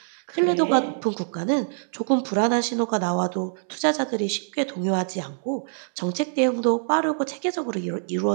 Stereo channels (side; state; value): left; silent; digital silence